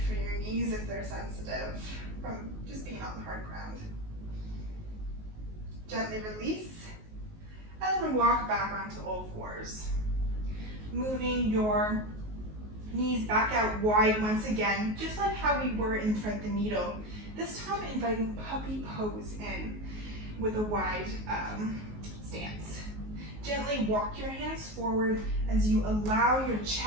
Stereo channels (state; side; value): late; left; 19 ms